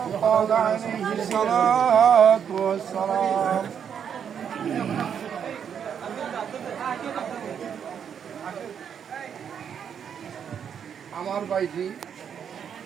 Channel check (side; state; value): left; quieter; 7.9 dB